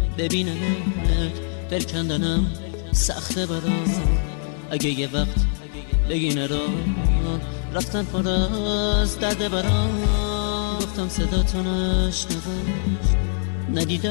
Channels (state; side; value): silent; right; digital silence